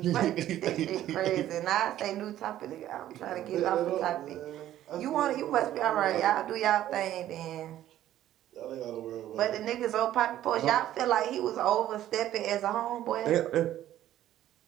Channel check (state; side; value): quieter; left; 12.8 dB